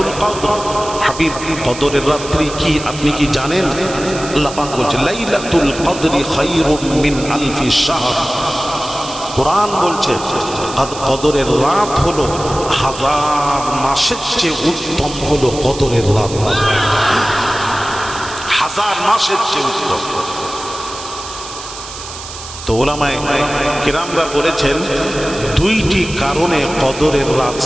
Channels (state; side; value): noise; right; hiss, 12 dB below the sound